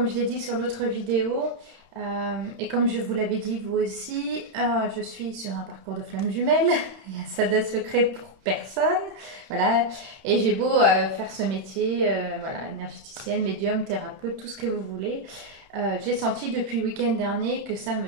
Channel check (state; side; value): late; left; 31 ms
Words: je l'ai dit sur l'autre vidéo, et comme je vous l'avais dit vous aussi, je suis sur un parcours de flammes jumelles. Il y a ça de secret pour personne. Voilà. Et j'ai beau faire ce métier, voilà, énergéticienne, médium, thérapeute, tout ce que vous voulez. J'ai senti depuis le week-end dernier que ça